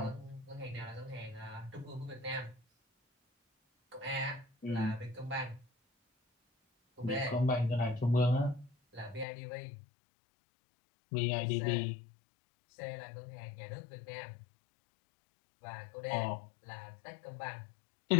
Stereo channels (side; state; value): right; drops out; at 9.2 s